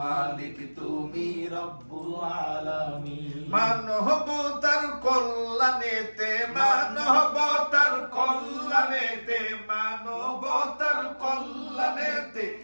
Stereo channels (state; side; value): inverted; both; correlation -1.00